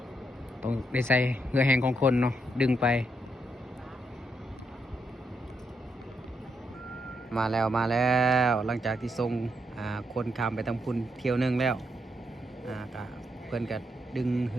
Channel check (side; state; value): both; normal; correlation 0.79